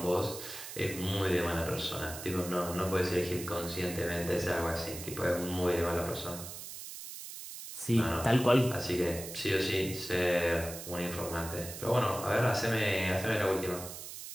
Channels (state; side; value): noise; right; hiss, 10 dB below the sound